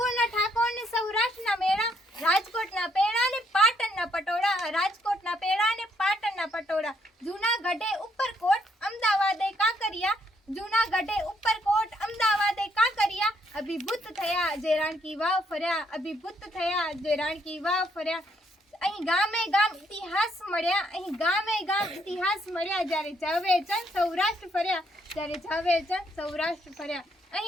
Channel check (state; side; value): normal; both; correlation 0.72